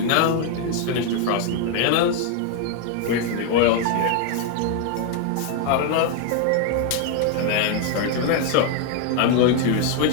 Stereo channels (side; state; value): both; different; correlation 0.00